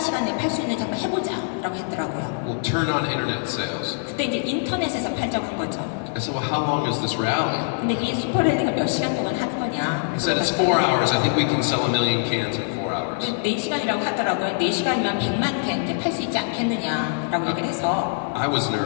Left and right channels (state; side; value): silent; right; 60 dB below the other